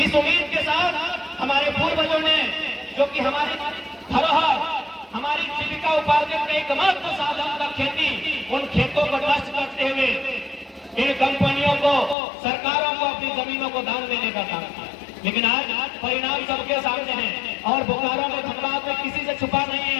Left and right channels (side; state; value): right; drops out; at 12.2 s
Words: इस उम्मीद के साथ हमारे पूर्वजों ने, जो कि हमारी धरोहर, हमारी जीविका उपार्जन का एकमात्र साधन था खेती, उन खेतों को नष्ट करते हुए इन कंपनियों को, सरकारों को अपनी जमीनों को दान देने का काम किया। लेकिन आज परिणाम सबके सामने है और बोकारो में, धनबाद में किसी से छुपा नहीं